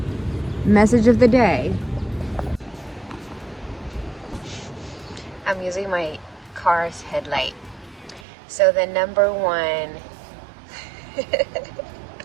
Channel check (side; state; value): left; drops out; at 8.2 s